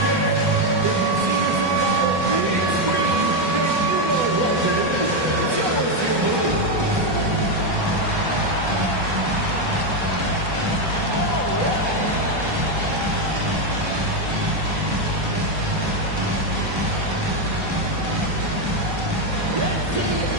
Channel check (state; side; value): late; left; 1.2 ms